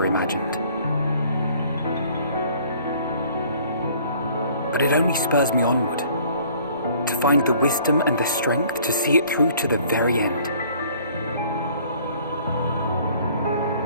imagined. But it only spurs me onward, to find the wisdom and the strength to see it through to the very end.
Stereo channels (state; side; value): inverted; both; correlation -0.55